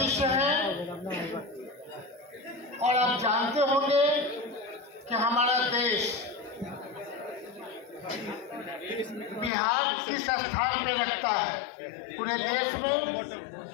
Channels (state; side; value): drops out; right; at 9.5 s